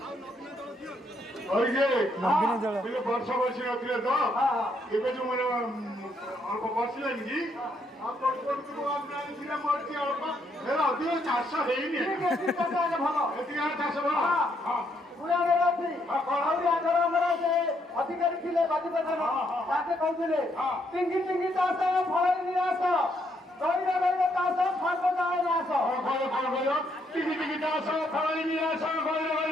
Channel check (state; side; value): normal; both; correlation 0.74